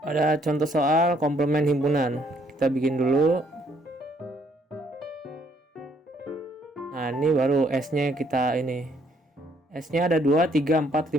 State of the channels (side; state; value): both; normal; correlation 0.67